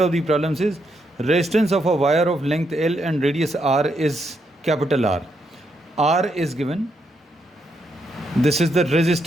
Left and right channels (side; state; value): both; normal; correlation 0.79